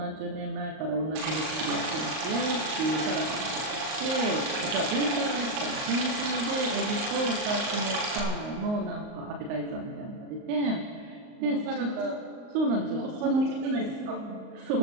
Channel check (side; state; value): left; late; 38 ms